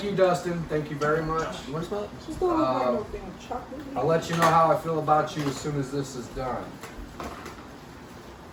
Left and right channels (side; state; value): both; identical; correlation 1.00